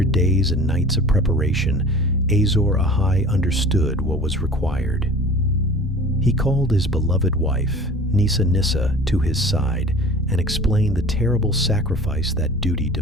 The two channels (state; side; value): normal; both; correlation 0.43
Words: days and nights of preparation, Azor Ahai understood what was required. He called his beloved wife, Nissa, to his side and explained the terrible sacrifice that duty